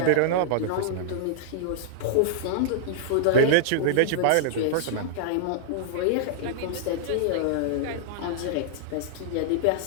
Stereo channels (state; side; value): different; both; correlation -0.02